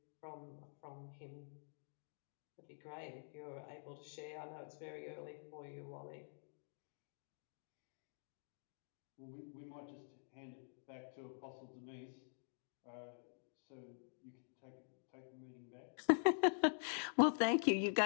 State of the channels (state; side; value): silent; right; digital silence